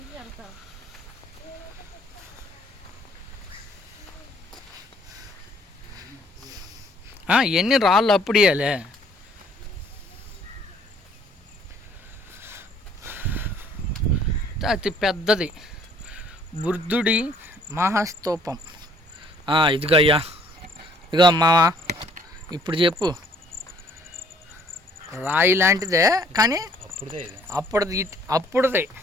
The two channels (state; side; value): normal; both; correlation 0.60